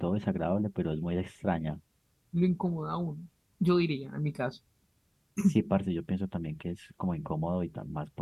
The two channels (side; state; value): both; identical; correlation 1.00